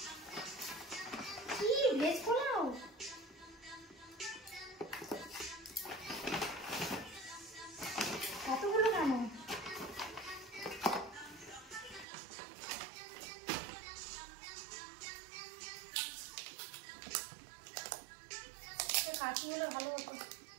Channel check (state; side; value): drops out; left; at 12.1 s